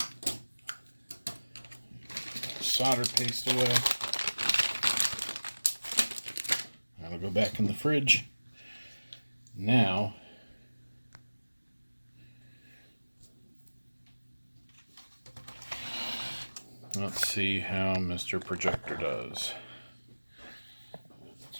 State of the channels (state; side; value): inverted; both; correlation -1.00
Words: Solder paste away. That'll go back in the fridge. Now, let's see how Mr. Projector does.